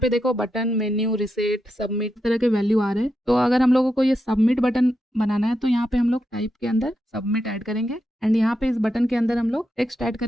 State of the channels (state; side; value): normal; both; correlation 0.85